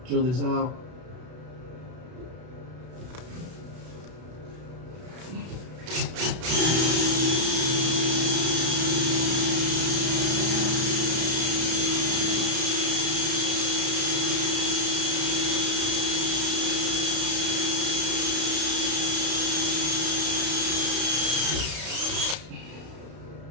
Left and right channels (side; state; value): left; late; 32 ms